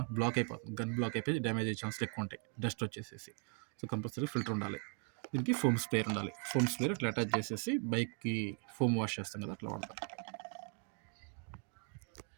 బ్లాక్ అయిపోతుంది. గన్ బ్లాక్ అయిపోయి డ్యామేజ్ అయ్యే ఛాన్సులు ఎక్కువ ఉంటాయి, డస్ట్ వచ్చేసేసి. సో కంపల్సరీ ఫిల్టర్ ఉండాలి. దీనికి ఫోమ్ స్ప్రేయర్ ఉండాలి. ఫోమ్ స్ప్రేయర్ అట్లా అటాచ్ చేసేసి బైక్కి ఫోమ్ వాష్ చేస్తాం కదా, అట్లా వాడతారు.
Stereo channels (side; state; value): left; quieter; 39.1 dB